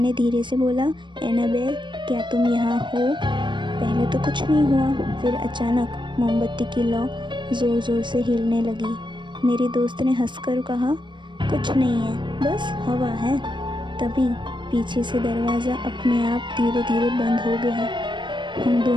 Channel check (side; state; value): left; late; 0.22 ms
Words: धीरे से बोला, एनाबेल क्या तुम यहाँ हो? पहले तो कुछ नहीं हुआ, फिर अचानक मोमबत्ती की लौ ज़ोर ज़ोर से हिलने लगी। मेरी दोस्त ने हंसकर कहा, कुछ नहीं है, बस हवा है। तभी पीछे से दरवाज़ा अपने आप धीरे धीरे बंद हो गया। हम